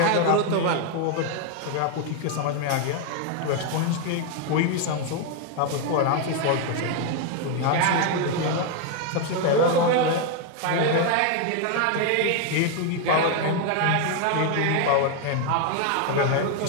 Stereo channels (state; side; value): different; both; correlation 0.01